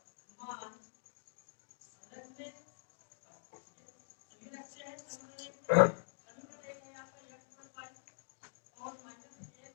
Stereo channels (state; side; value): silent; right; digital silence